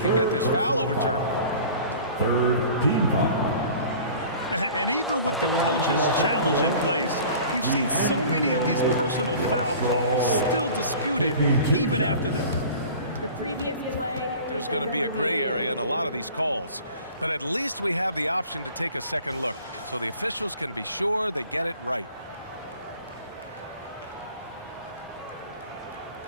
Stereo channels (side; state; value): both; inverted; correlation -0.44